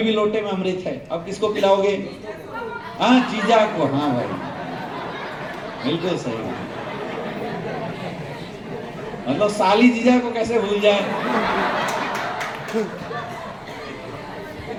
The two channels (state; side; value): identical; both; correlation 1.00